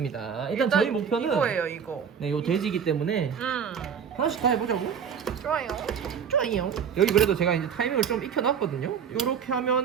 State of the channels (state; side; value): quieter; left; 7.5 dB